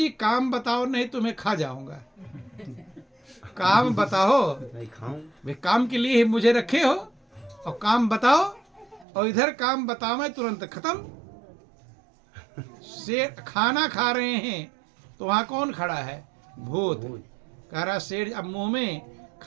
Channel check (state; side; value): drops out; left; at 9.1 s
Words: काम बताओ नहीं तुम्हें खा जाऊंगा। काम बताओ, वे काम के लिए ही मुझे रखे हो, और काम बताओ, और इधर काम बताओ मैं तुरंत खत्म। सेठ खाना खा रहे हैं तो वहां कौन खड़ा है? भूत। कह रहा सेठ अब मुंह में